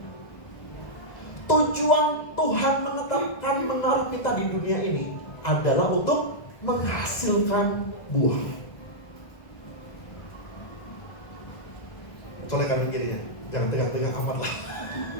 Tujuan Tuhan menetapkan menaruh kita di dunia ini adalah untuk menghasilkan buah. Colek kanan kirinya, jangan tengah-tengah amat lah.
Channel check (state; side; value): late; right; 2.0 ms